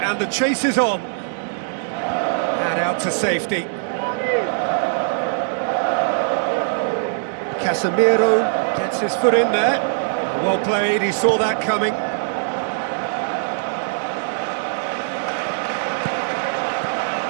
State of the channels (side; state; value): left; silent; 65 dB below the other